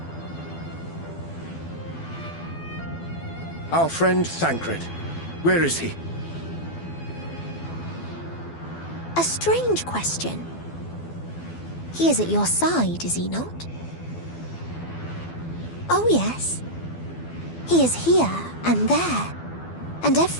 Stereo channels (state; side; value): late; right; 12 ms